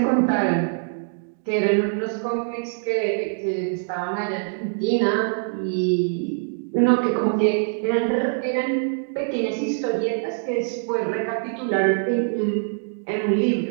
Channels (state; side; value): silent; left; digital silence